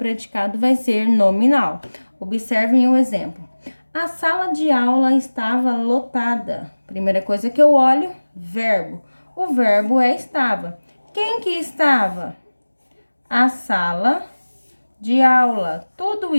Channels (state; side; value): inverted; both; correlation -1.00